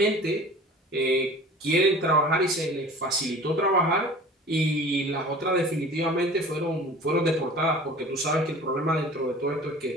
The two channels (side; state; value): both; normal; correlation 0.42